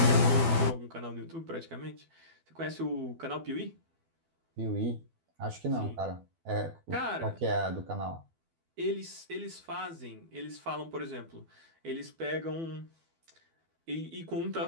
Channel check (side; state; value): left; late; 12 ms